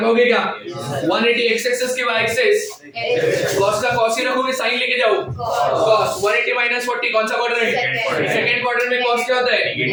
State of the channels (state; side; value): identical; both; correlation 1.00